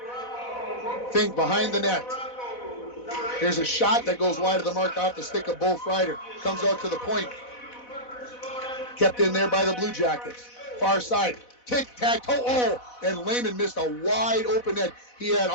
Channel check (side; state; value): right; late; 4.1 ms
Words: Fink behind the net. Here's a shot that goes wide of the mark off the stick of Bo Freider. Comes out to the point. Kept in there by the Blue Jackets. Far side. Tic-tac-toe. Oh, and Lehman missed a wide open net. He had